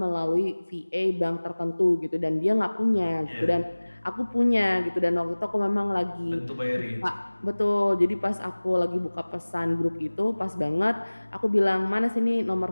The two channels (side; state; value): both; inverted; correlation -1.00